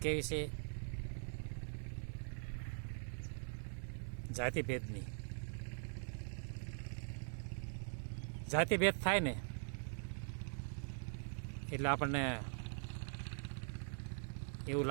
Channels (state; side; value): silent; left; digital silence